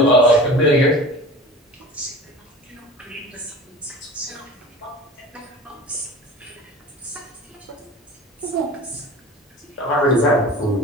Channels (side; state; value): both; normal; correlation 0.38